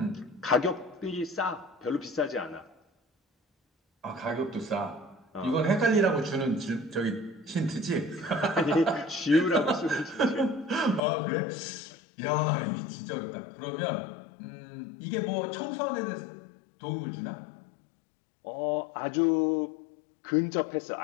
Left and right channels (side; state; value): right; drops out; at 11.0 s